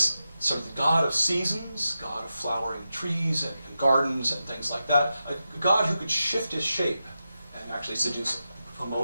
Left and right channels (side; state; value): both; inverted; correlation -0.90